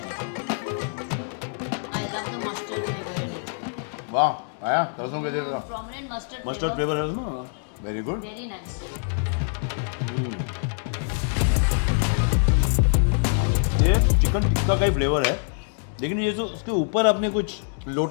I love the mustard flavor. वाह, आया सरसों के जैसा Prominent mustard mustard flavor. Flavour है उसमें। Very good. Very nice. ये चिकन टिक्का का ही फ्लेवर है, लेकिन ये जो उसके ऊपर आपने कुछ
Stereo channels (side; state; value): right; silent; digital silence